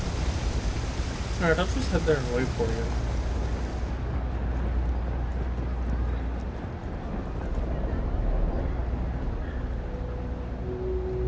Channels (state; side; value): identical; both; correlation 1.00